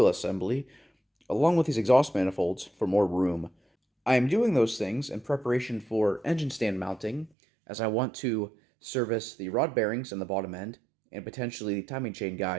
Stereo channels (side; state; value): left; drops out; at 7.3 s